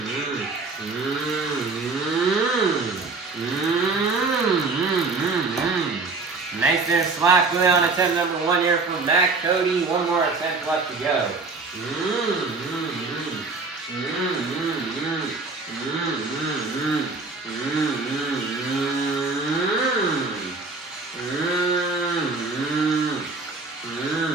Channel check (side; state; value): left; quieter; 3.9 dB